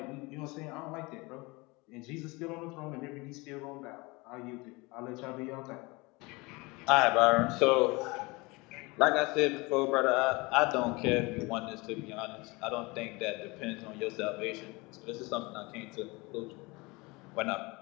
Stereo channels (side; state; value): right; quieter; 24.9 dB